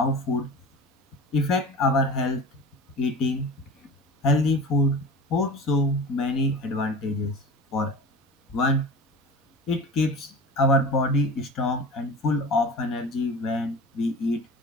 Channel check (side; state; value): both; normal; correlation 0.35